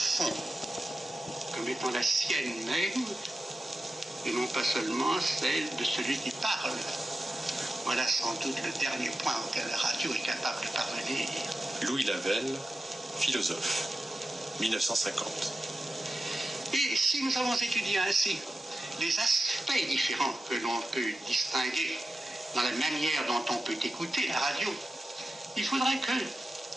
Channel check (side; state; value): both; normal; correlation 0.92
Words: comme étant la sienne même, et non pas seulement celle de celui qui parle. Voilà sans doute le dernier point auquel la radio est capable de parvenir. Louis Lavelle, philosophe, 1950. Et si nous avons étudié ainsi les aspects différents que l'on peut distinguer dans la manière dont on peut écouter la radio, il faudrait que